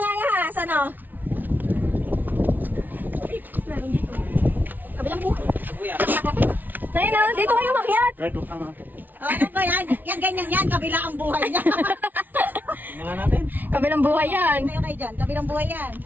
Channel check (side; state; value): left; late; 0.084 ms